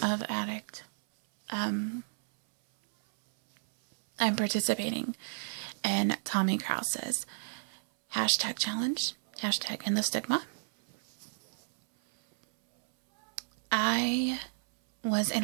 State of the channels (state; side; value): silent; left; 57 dB below the other